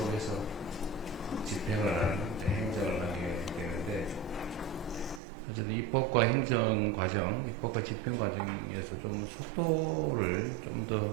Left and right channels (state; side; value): drops out; left; at 5.2 s